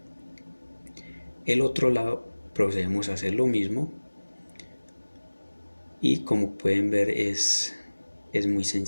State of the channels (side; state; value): both; inverted; correlation -1.00